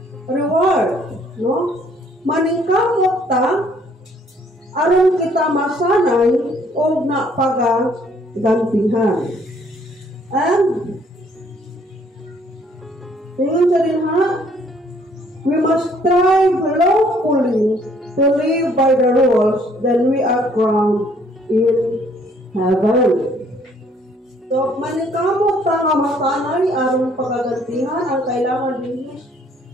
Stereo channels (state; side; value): normal; both; correlation 0.63